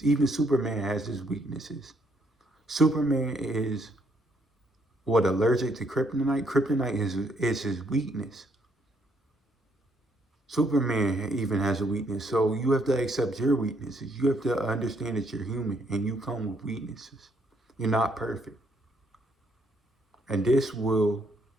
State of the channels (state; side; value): normal; both; correlation 0.71